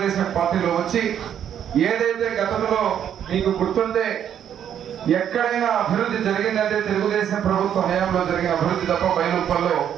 పార్టీలో వచ్చి ఏదైతే గతంలో మీకు గుర్తుంటే ఎక్కడైనా అభివృద్ధి జరిగిందంటే తెలుగుదేశం ప్రభుత్వ హయాంలో జరిగిన అభివృద్ధి తప్ప బయలుప్పల్లో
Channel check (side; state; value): left; quieter; 9.4 dB